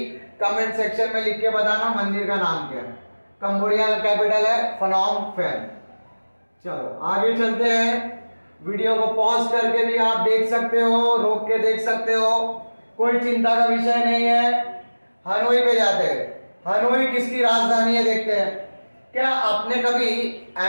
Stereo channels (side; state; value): both; inverted; correlation -1.00